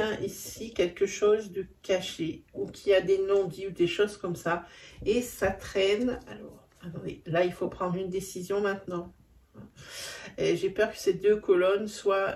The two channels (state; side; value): identical; both; correlation 1.00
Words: ici quelque chose de caché ou qui a des non-dits ou des choses comme ça. Et ça traîne. Alors, attendez, là, il faut prendre une décision maintenant. J'ai peur que ces deux colonnes soient